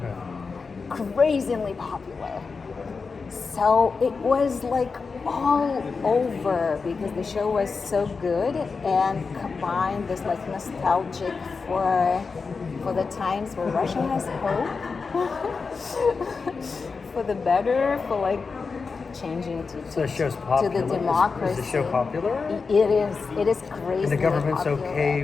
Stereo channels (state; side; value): quieter; right; 4.8 dB